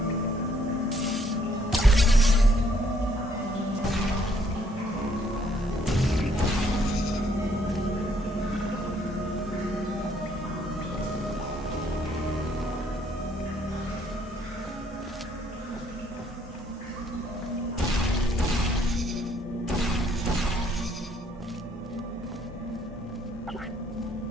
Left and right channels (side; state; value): both; normal; correlation 0.67